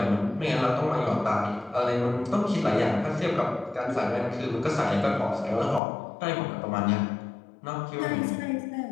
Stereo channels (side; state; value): right; drops out; at 5.8 s